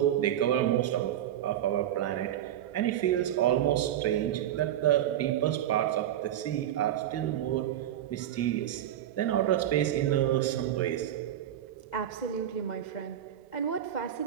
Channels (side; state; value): left; quieter; 11.5 dB